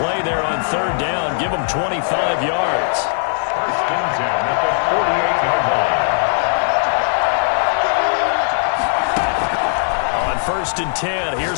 there on third down. Give them 25 yards. First and 10 at the 48-yard line. On first and 10,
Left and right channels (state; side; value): silent; right; digital silence